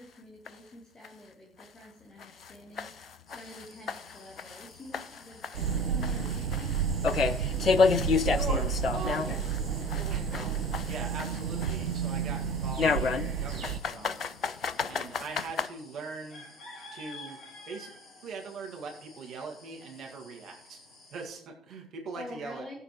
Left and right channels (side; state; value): both; normal; correlation 0.40